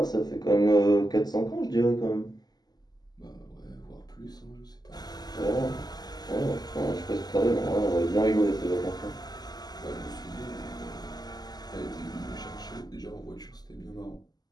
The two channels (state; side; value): late; right; 0.20 ms